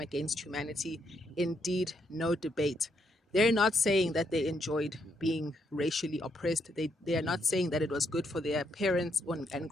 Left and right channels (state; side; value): normal; both; correlation 0.76